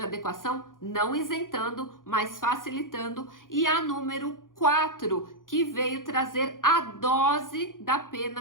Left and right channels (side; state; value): right; late; 0.90 ms